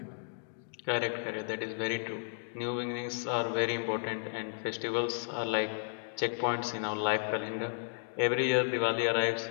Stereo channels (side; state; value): right; silent; digital silence